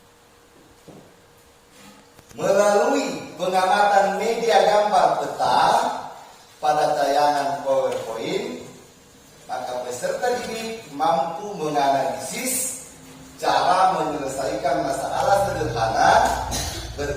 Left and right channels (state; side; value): identical; both; correlation 1.00